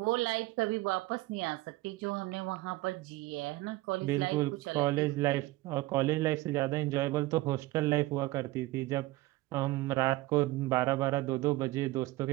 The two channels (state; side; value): quieter; left; 19.3 dB